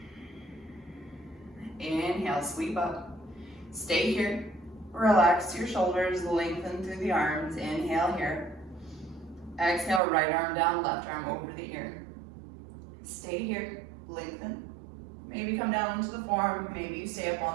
Inhale, sweep up. Stay here. Relax your shoulders, lengthen through the arms. Inhale here. Exhale, right arm down, left arm over the ear. Stay here, lengthen. Maybe come down into the forearm, maybe you stay up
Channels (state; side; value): drops out; left; at 10.0 s